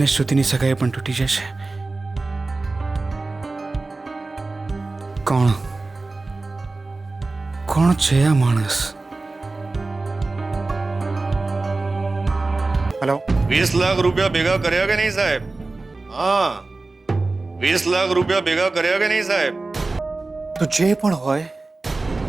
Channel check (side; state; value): left; quieter; 3.4 dB